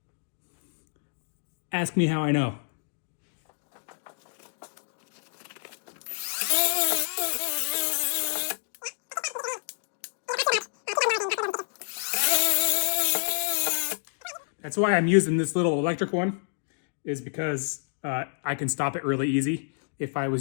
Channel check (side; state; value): right; silent; digital silence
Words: Ask me how I know. That's why I'm using this little electric one, is because I can stop it really easy. If I